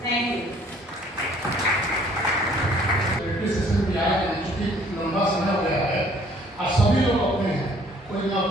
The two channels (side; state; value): both; normal; correlation 0.58